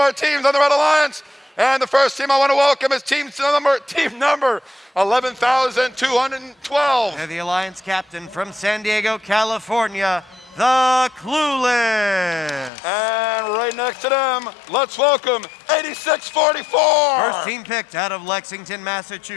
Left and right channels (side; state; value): right; drops out; at 12.7 s